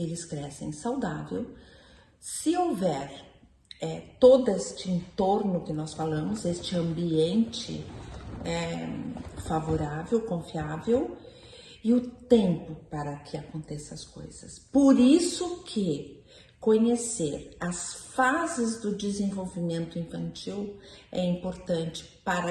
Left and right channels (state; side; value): identical; both; correlation 1.00